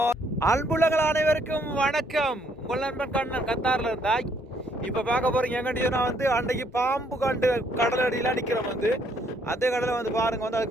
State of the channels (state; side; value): normal; both; correlation 0.68